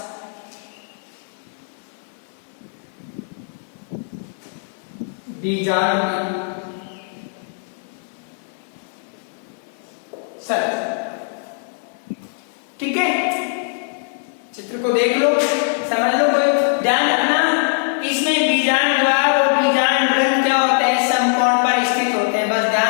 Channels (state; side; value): silent; right; 65 dB below the other